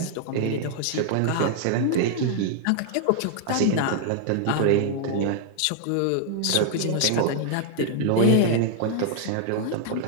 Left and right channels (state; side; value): different; both; correlation 0.00